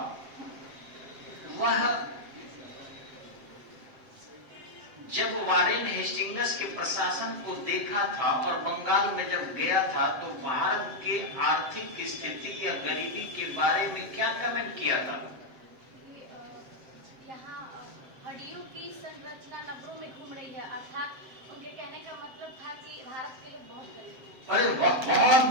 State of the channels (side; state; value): left; late; 7.6 ms